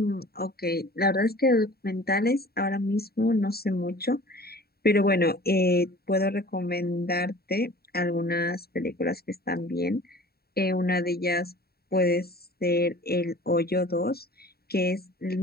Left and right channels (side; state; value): right; late; 0.45 ms